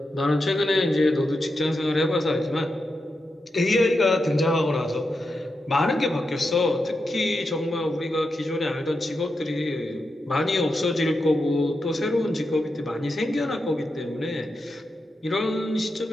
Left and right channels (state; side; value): normal; both; correlation 0.88